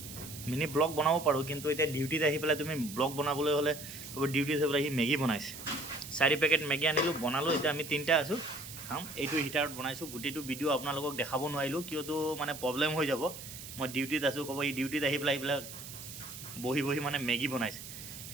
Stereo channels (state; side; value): noise; right; hiss, 12 dB below the sound